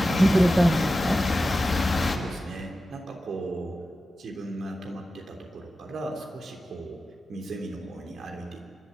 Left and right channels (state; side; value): normal; both; correlation 0.93